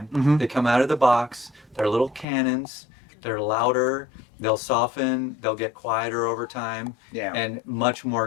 Mhm. They come out of the box, they're little cannons, they're louder, they'll soften, they'll get quieter over time, Yeah. and much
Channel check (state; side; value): drops out; right; at 2.2 s